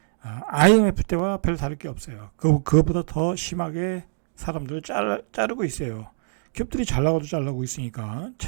IMF 때와 별 다를 게 없어요. 그거보다 더 심하게 사람들 자르고 있어요. 기업들이 잘 나가도 잘 나가고 있으니까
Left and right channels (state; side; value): silent; left; digital silence